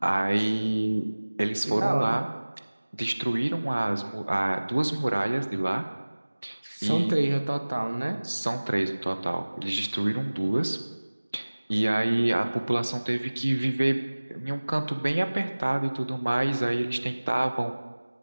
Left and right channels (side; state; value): both; inverted; correlation -1.00